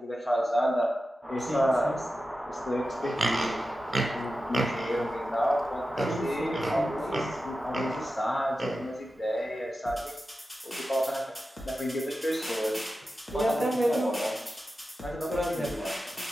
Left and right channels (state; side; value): normal; both; correlation 0.92